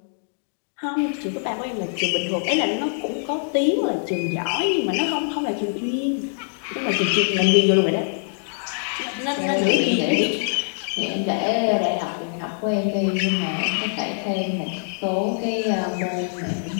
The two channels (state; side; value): silent; right; digital silence